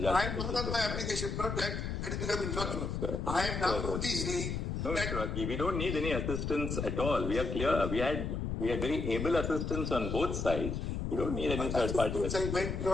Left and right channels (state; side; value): noise; left; rumble, 3 dB below the sound